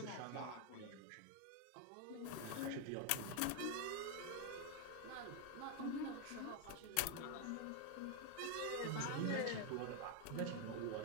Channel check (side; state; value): both; different; correlation 0.01